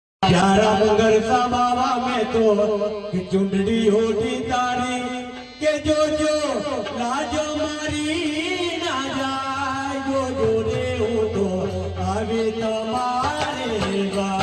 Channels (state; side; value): identical; both; correlation 1.00